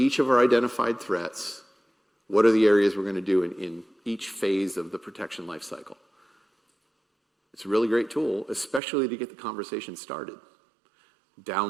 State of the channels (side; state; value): left; drops out; at 8.8 s